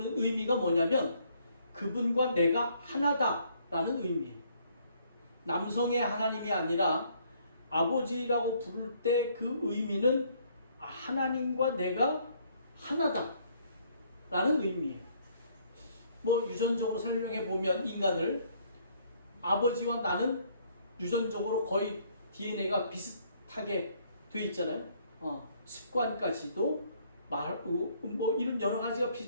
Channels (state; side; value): inverted; both; correlation -0.65